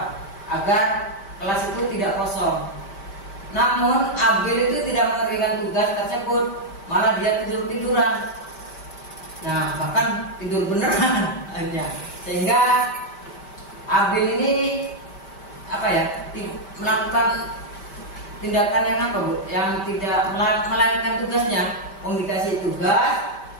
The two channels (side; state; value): right; late; 5.1 ms